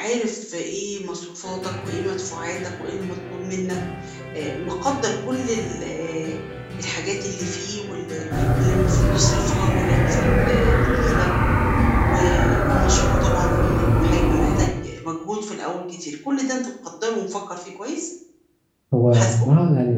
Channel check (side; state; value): both; identical; correlation 1.00